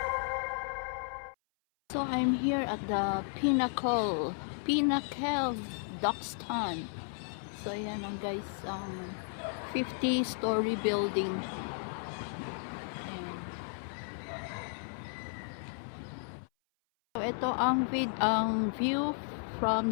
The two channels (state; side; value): silent; right; 55 dB below the other